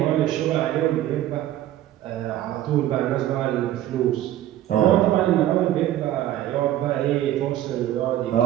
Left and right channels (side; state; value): left; quieter; 13.1 dB